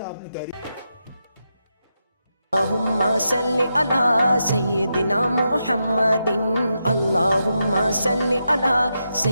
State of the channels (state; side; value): inverted; both; correlation -0.86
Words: نے تحریک. اللہم صلی علی سیدنا محمد، اللہم صلی علی